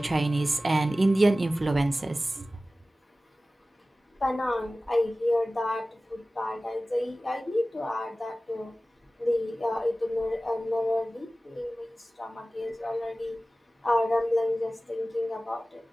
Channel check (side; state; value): both; normal; correlation 0.96